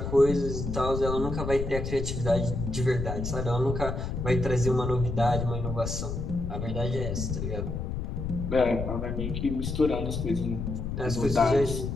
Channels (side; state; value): left; noise; rumble, 4 dB below the sound